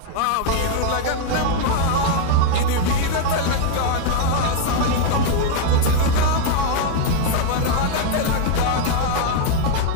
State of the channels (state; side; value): different; both; correlation 0.01